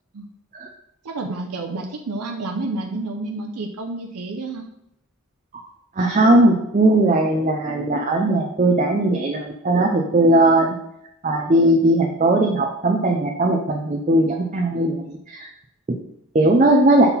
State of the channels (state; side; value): normal; both; correlation 0.40